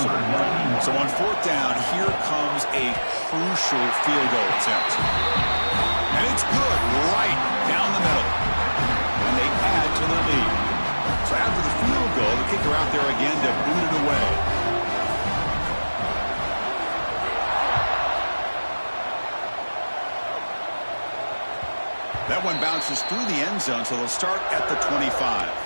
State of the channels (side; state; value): both; inverted; correlation -1.00